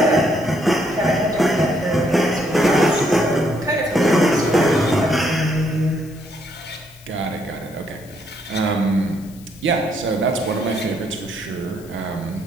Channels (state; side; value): noise; left; hiss, 24 dB below the sound